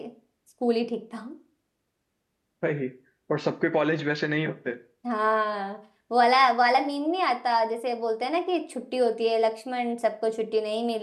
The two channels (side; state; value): both; identical; correlation 1.00